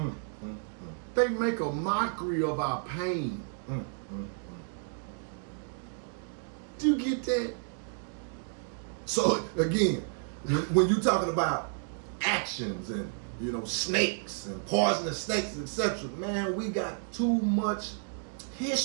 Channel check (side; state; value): left; silent; 57 dB below the other